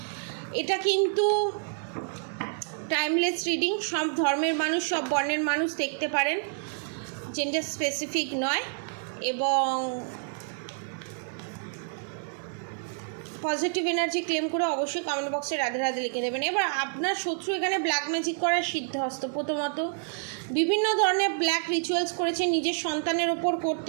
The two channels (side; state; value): left; silent; 59 dB below the other